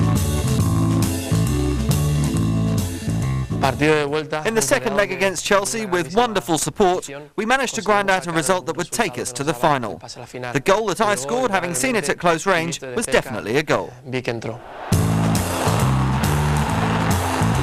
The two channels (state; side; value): identical; both; correlation 1.00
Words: In the second leg against Chelsea, with wonderful support, we managed to grind out a result that would take us to the final. The goal that I scored, having seen it at close range, was definitely a goal.